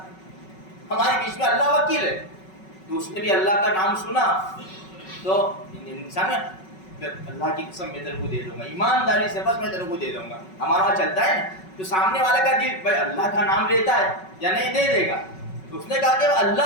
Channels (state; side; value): late; right; 5.3 ms